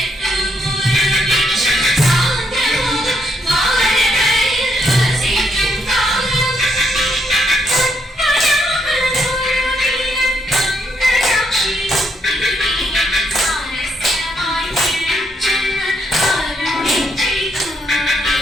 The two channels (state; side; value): normal; both; correlation 0.75